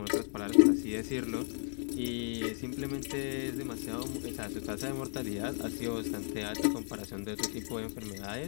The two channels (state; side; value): silent; right; 55 dB below the other